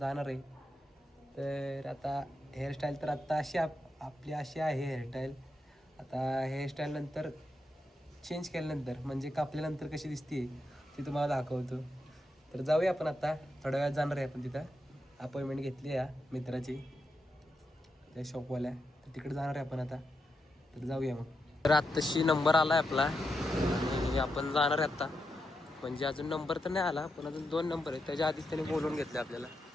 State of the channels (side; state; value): both; normal; correlation 0.85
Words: आहे. तर आता हेअरस्टाईल तर आत्ता अशी आपली अशी आहे हेअरस्टाईल. आता हेअरस्टाईल नंतर चेंज केल्यानंतर म्हणजे कापल्यानंतर कशी दिसते ती तुम्हाला दाखवतो. तर जाऊया आपण आता, थोड्या वेळात जाणार आहे आपण तिथं. अपॉइंटमेंट घेतली आहे मित्राची त्या शॉपवाल्या, तर तिकडे जाणार आहे आपण आता. तर जाऊया मग. तर आत्ताशी नंबर आला आहे आपला आणि आपण जाणार आहे आत्ता. म्हणजे अजून नंबर तर नाही आला, पण अजून 2 नंबर आहेत. त्याच्या आधीच त्यांनी बोलवून घेतले आपल्याला.